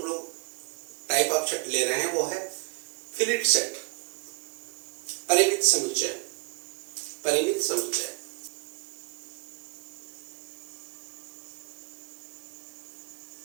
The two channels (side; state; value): left; quieter; 28.5 dB